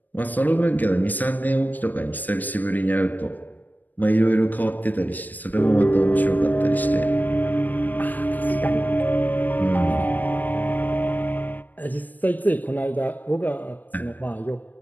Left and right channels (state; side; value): late; right; 0.086 ms